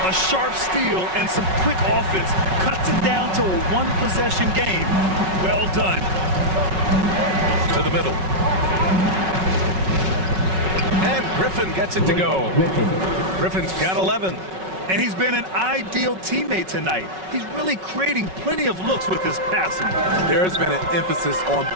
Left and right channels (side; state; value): left; late; 5.4 ms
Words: A sharp steal and some quick offense cuts it down to a one-possession game. Well done. To the middle. And Griffin gets it to go. Griffin's got 11. And he's been an ideal teammate tonight. He's really creating plenty of looks with his passing. There's been an emphasis on